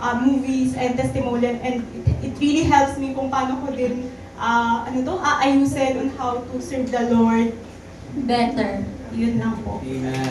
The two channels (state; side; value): identical; both; correlation 1.00